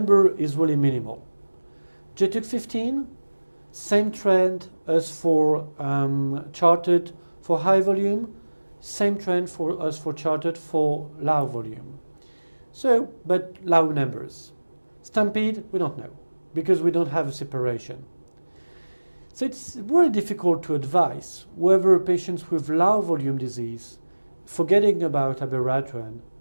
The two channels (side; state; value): both; inverted; correlation -1.00